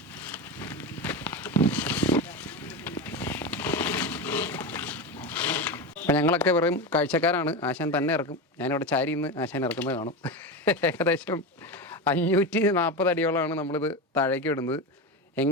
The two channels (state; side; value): normal; both; correlation 0.19